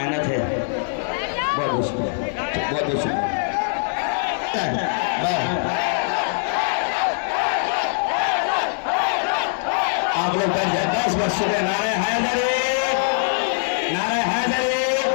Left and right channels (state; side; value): silent; right; digital silence